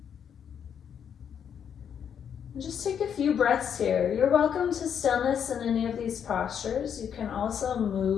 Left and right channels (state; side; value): quieter; right; 8.1 dB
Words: Just take a few breaths here. You're welcome to stillness in any of these postures. You can also